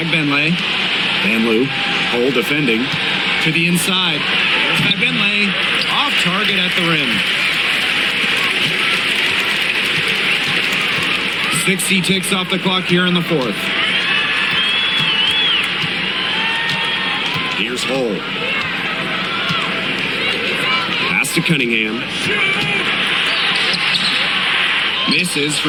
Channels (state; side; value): noise; left; hum, 25 dB below the sound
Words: Van Loo. Hole defending. To the inside. There's Bagbenley. Off target at the rim. 60 ticks off the clock here in the fourth. Here's Hull. Pass to Cunningham. Misses